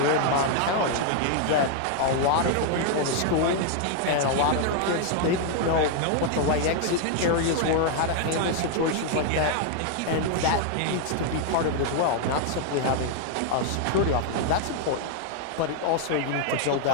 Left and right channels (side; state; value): both; different; correlation 0.00